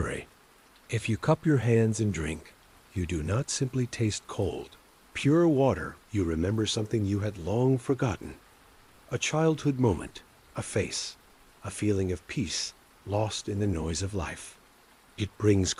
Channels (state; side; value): identical; both; correlation 1.00